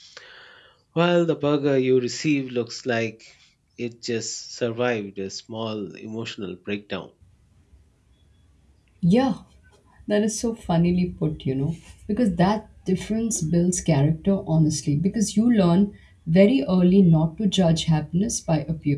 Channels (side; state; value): both; identical; correlation 1.00